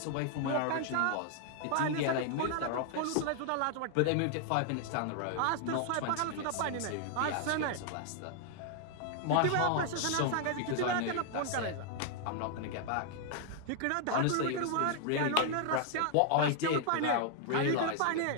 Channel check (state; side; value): different; both; correlation 0.00